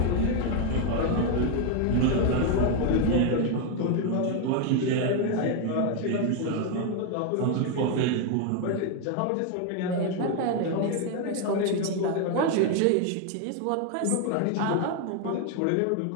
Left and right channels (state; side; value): different; both; correlation 0.01